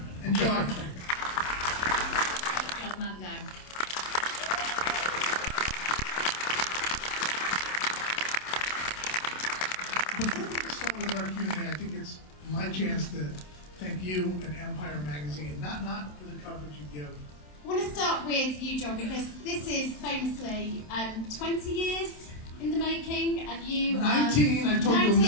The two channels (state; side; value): late; right; 27 ms